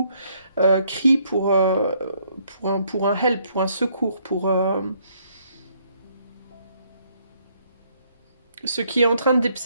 crie pour un help, pour un secours, ce qui est en train de,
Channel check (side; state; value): both; inverted; correlation -0.69